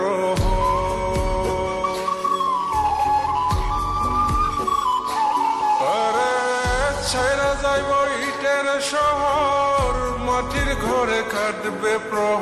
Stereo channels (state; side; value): identical; both; correlation 1.00